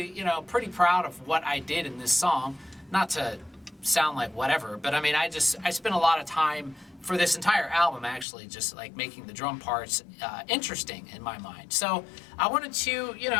pretty proud of what I did in this song. Not to sound like whatever, but I mean, I spent a lot of time for this entire album actually just like making the drum parts interesting in my mind. So I wanted to,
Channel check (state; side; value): drops out; right; at 8.2 s